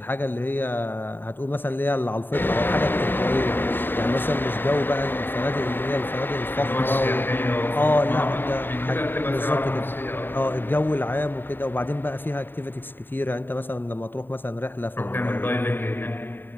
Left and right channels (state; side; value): late; right; 0.095 ms